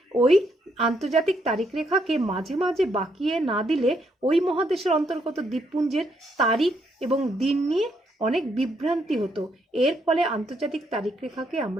ওই আন্তর্জাতিক তারিখ রেখাকে মাঝে মাঝে বাঁকিয়ে না দিলে ওই মহাদেশের অন্তর্গত দ্বীপপুঞ্জের তারিখ এবং দিন নিয়ে অনেক বিভ্রান্তি হতো। এর ফলে আন্তর্জাতিক তারিখ রেখাকে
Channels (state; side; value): normal; both; correlation 0.74